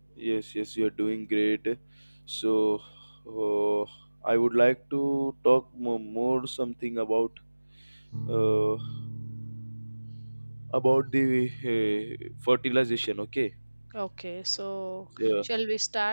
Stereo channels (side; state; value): both; inverted; correlation -1.00